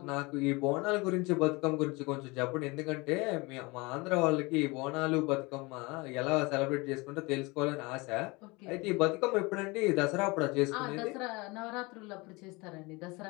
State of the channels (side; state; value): right; quieter; 25.3 dB